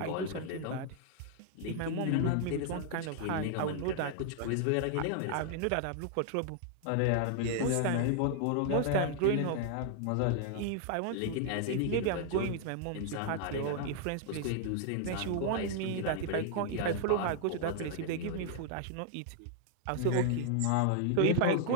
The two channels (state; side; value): different; both; correlation 0.00